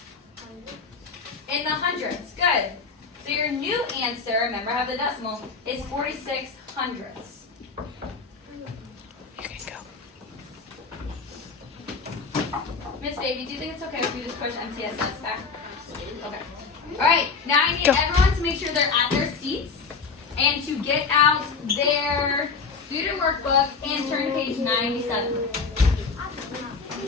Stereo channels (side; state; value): right; quieter; 4.9 dB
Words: In the hundreds, good. So your new answer, remember I have the decimal, is 46 hundredths. You can go. Miss Baby, do you think it's okay if we just push MTSS back? Okay. Alright, now I need Go. everyone to make sure they're at their seats and to get out their student workbook and turn to page 97.